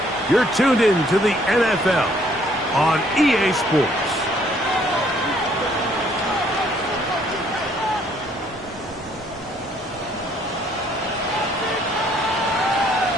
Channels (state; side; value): normal; both; correlation 0.64